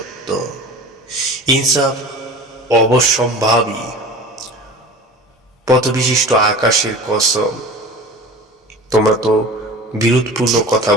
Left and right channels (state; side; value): normal; both; correlation 0.37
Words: ইনসাফ অবশ্যম্ভাবী। পথবিশিষ্ট আকাশের কসম, তোমরা তো বিরোধপূর্ণ কথা